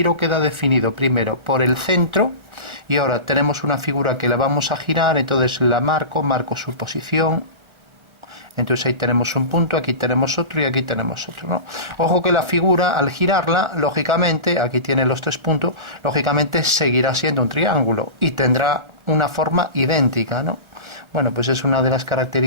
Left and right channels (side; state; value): left; late; 1.4 ms